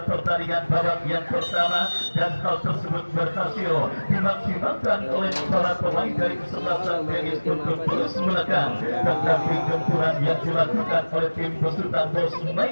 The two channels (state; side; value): inverted; both; correlation -1.00